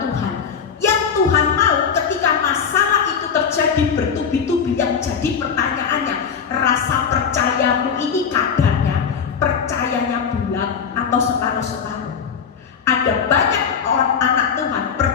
Yang Tuhan mau ketika masalah itu terjadi bertubi-tubi, yang jadi pertanyaannya, rasa percayamu ini kadarnya, percayanya bulat atau separuh-separuh. Ada banyak orang anak Tuhan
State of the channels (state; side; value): quieter; right; 6.8 dB